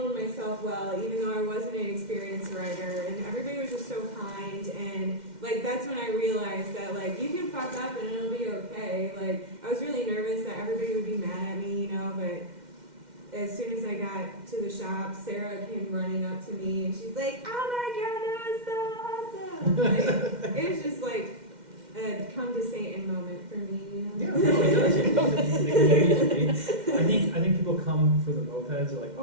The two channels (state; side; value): late; left; 2.1 ms